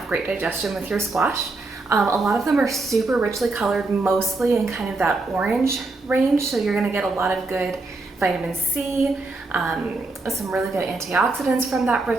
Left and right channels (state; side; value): quieter; left; 3.3 dB